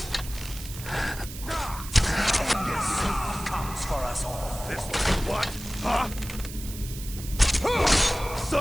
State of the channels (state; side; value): noise; right; hiss, 12 dB below the sound